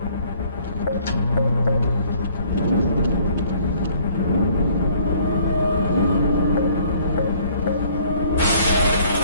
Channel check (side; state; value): both; inverted; correlation -0.59